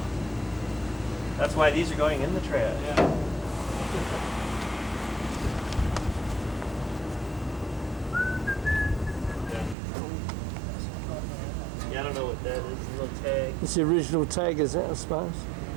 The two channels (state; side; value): drops out; left; at 9.8 s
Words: That's why these are going in the trash. Yeah. Yeah, I don't know what that is. A little tag. It's the original tag, is it, I suppose?